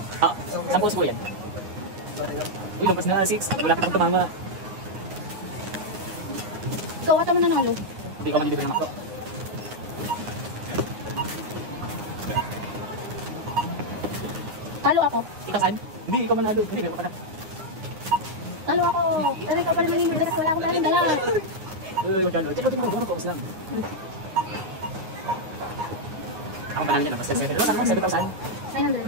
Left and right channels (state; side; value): late; left; 9.6 ms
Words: Ah, 10 siguro yan. Uy, lumpas na 6. Wala ka pang tumama. Ikaw ata mo nanalo. Hindi ko manidibig naman. Talo ako. Ikaw saan? Hindi, ikaw manalo. Hindi, meron pa na. Talo ako. Pero ikaw pa rin manimili kasi wala akong talang dala. Uy, magkano. Check mo, gano'n ko lang. Ako panalo dyan, 7,000. 7,000? 900.